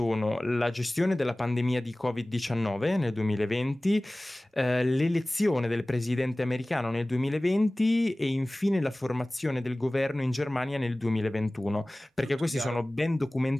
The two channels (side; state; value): both; normal; correlation 0.98